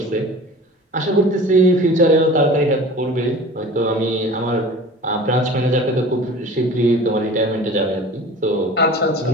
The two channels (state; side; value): normal; both; correlation 0.40